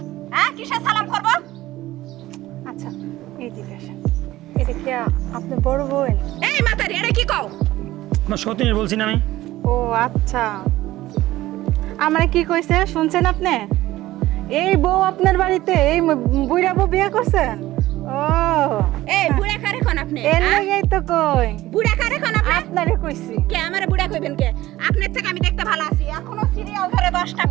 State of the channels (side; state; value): left; quieter; 16.3 dB